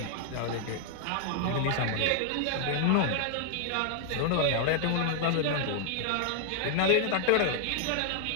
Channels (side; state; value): both; different; correlation 0.00